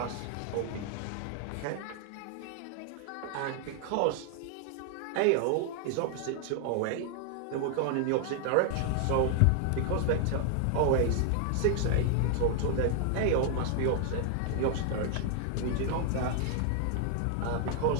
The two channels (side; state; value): both; different; correlation 0.00